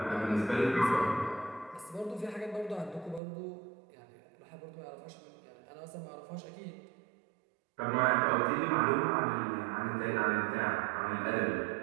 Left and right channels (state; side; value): drops out; left; at 3.2 s